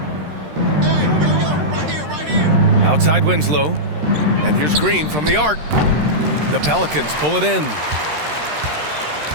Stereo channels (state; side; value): late; left; 13 ms